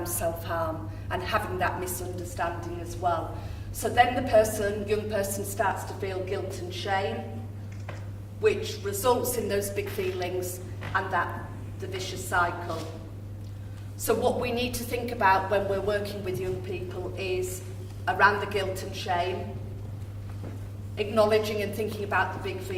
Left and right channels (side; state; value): both; identical; correlation 1.00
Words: self-harm and having that misunderstanding as well. So then the young person starts to feel guilt and shame, which results in those big feelings and the vicious cycle. So what we need to think about when we're working with young people is around the guilt and shame, acknowledging and thinking about the big